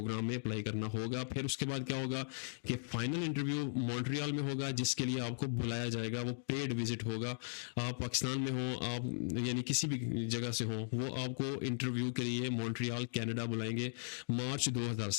में अप्लाई करना होगा। फिर उसके बाद क्या होगा कि फाइनल इंटरव्यू मॉन्ट्रियल में होगा, जिसके लिए आपको बुलाया जाएगा, वो पेड विजिट होगा। आप पाकिस्तान में हो, आप यानी किसी भी जगह से हो, वो आपको इंटरव्यू के लिए मॉन्ट्रियल कनाडा बुलाएंगे मार्च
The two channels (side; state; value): right; silent; digital silence